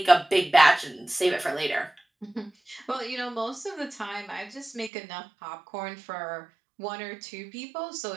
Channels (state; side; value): drops out; left; at 4.9 s